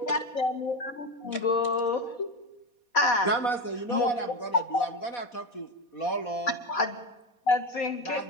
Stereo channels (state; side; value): late; right; 4.2 ms